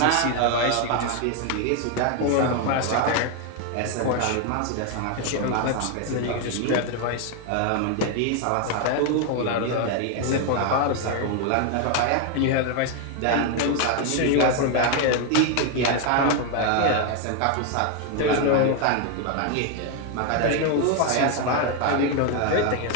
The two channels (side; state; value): both; different; correlation 0.01